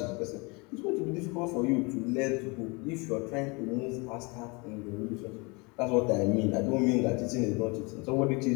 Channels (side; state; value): right; quieter; 28.6 dB